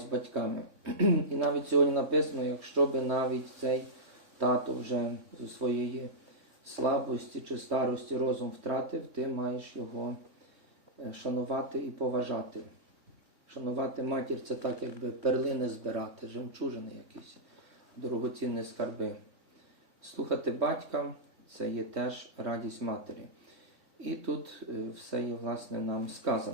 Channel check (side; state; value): left; late; 3.6 ms